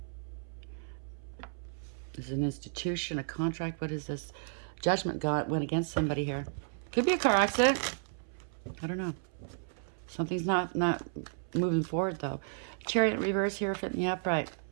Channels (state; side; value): silent; left; 56 dB below the other